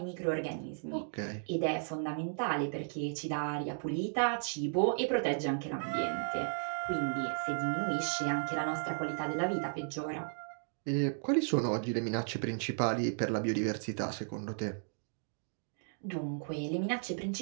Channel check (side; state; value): left; silent; digital silence